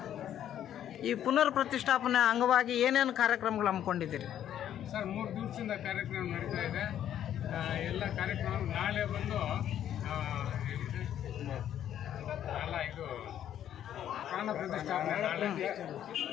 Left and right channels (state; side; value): quieter; right; 10.6 dB